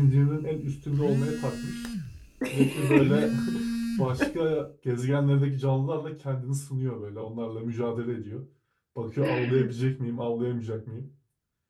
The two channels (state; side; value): identical; both; correlation 1.00